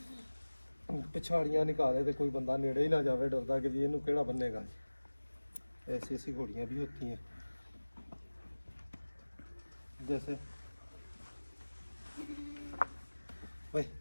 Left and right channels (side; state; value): both; inverted; correlation -1.00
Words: पिछाड़ियाँ निकाले तो कोई बंदा नेड़े ही ना जावे डरदा कि ये केड़ा बनेगा। ऐसी ऐसी घोड़ियाँ भी होती हैं, जैसे भाई